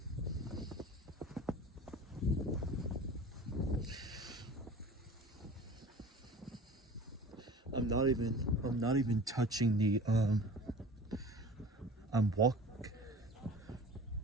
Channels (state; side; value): normal; both; correlation 0.41